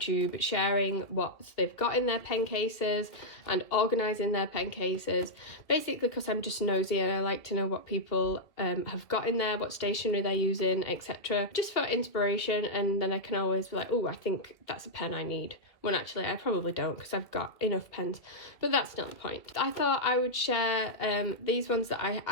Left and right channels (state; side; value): late; right; 2.0 ms